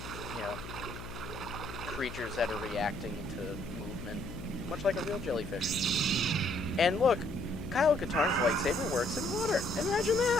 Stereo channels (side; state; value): left; noise; hum, 11 dB below the sound